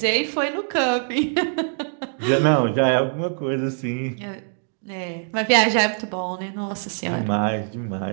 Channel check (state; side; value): silent; left; 55 dB below the other